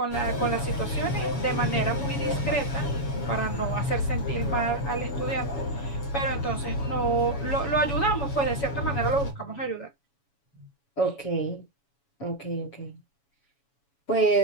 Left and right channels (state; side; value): late; right; 7.1 ms